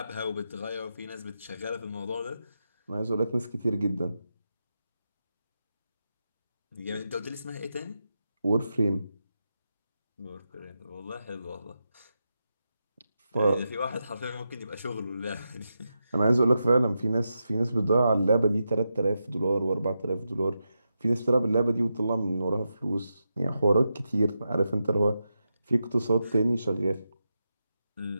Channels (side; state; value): both; inverted; correlation -0.87